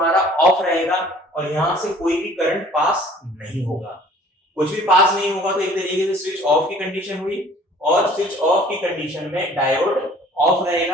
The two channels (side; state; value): both; normal; correlation 0.52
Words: ऑफ रहेगा और यहां से कोई भी करंट पास नहीं होगा। कुछ भी पास नहीं होगा तो एक तरीके से स्विच ऑफ की कंडीशन हुई, और स्विच ऑफ की कंडीशन में डायोड ऑफ